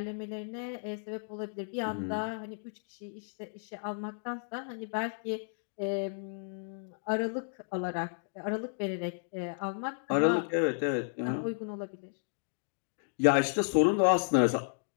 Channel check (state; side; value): silent; right; digital silence